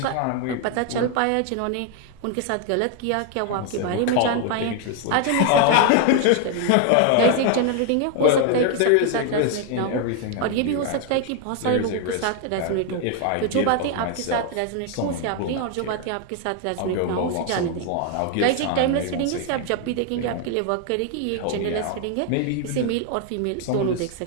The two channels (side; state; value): both; different; correlation 0.00